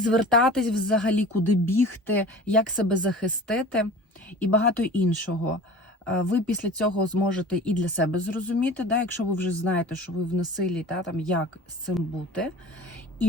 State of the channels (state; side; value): normal; both; correlation 0.39